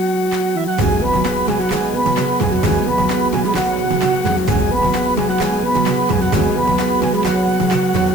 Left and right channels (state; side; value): noise; left; hiss, 15 dB below the sound